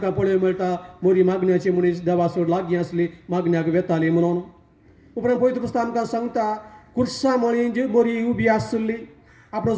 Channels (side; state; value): both; identical; correlation 1.00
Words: पळोवंक मेळटा मोरी मागण्याची मनीस देवा सोड लागीं आसली, मागण्याक वेताली म्हणून. उपरांत पवित्र पुस्तक आमकां सांगता कुर्सा मळीं जी मोरी उबी आसली.